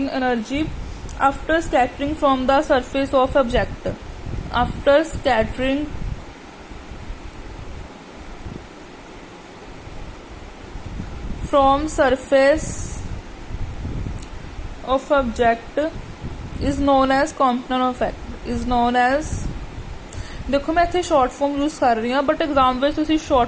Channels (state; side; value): identical; both; correlation 1.00